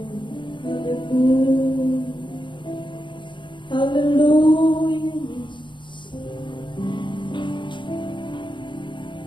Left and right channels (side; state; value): right; late; 0.23 ms